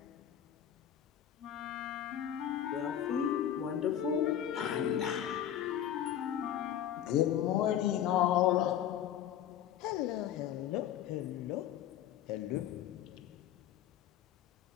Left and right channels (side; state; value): right; quieter; 10.5 dB